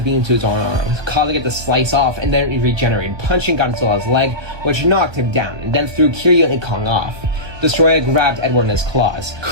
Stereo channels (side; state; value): left; late; 1.2 ms